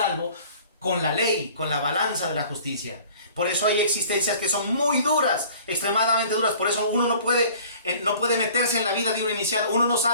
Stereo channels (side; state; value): both; inverted; correlation -0.49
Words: con la ley, con la balanza de la justicia. Por eso hay existencias que son muy duras, extremadamente duras. Por eso uno no puede meterse en la vida de un iniciado. Uno no